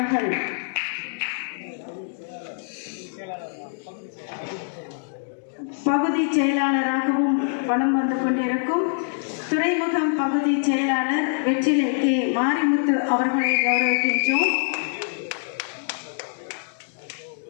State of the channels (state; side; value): silent; right; digital silence